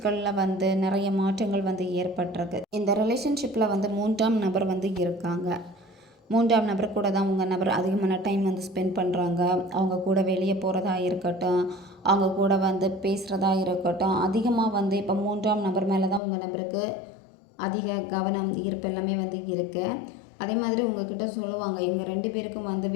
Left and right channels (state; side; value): drops out; right; at 16.2 s